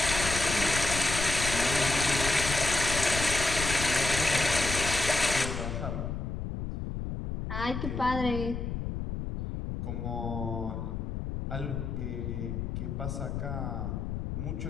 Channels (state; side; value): noise; left; rumble, 4 dB below the sound